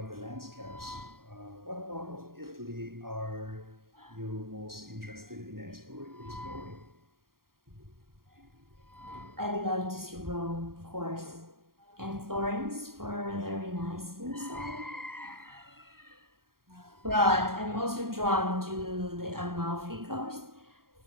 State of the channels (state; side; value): late; left; 0.93 ms